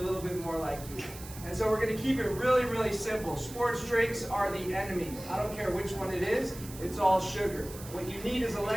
little bit more like you. And so we're going to keep it really, really simple. Sports drinks are the enemy. I don't care which one it is. It's all sugar. What you need is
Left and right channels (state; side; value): noise; right; hiss, 15 dB below the sound